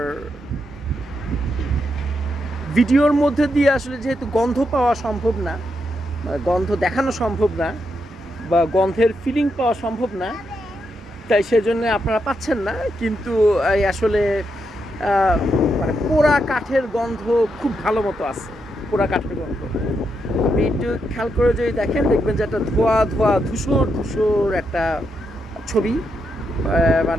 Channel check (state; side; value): normal; both; correlation 0.82